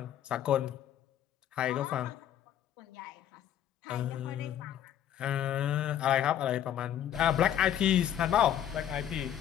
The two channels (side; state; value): right; quieter; 10.6 dB